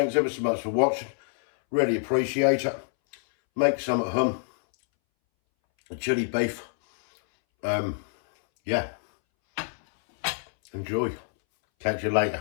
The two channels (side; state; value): right; silent; 61 dB below the other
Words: ever so much for watching. Really appreciate it. Make some at home. A chili beef. Yeah. Enjoy. Catch you